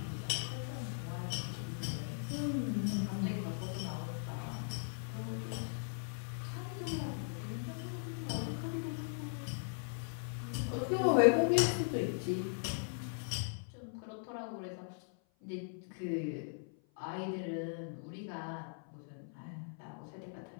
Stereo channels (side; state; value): right; silent; 52 dB below the other